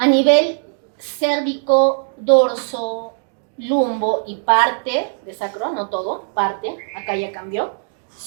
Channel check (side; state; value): left; silent; digital silence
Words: nivel cérvico, dorso, lumbo y parte de sacro, no todo, parte, acá ya cambió,